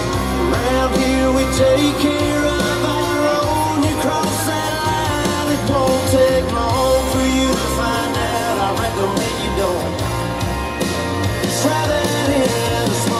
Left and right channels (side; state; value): both; identical; correlation 1.00